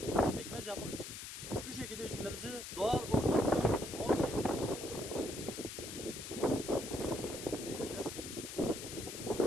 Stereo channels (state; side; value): noise; left; hiss, 8 dB below the sound